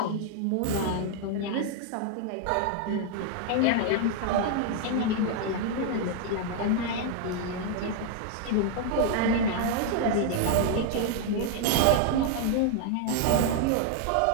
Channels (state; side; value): different; both; correlation 0.00